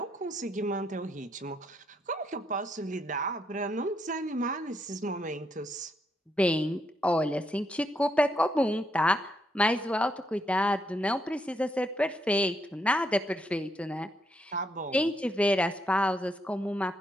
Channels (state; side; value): normal; both; correlation 0.77